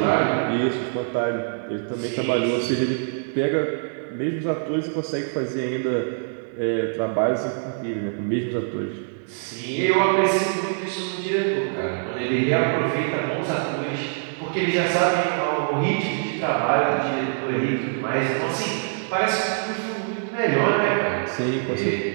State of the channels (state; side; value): silent; left; digital silence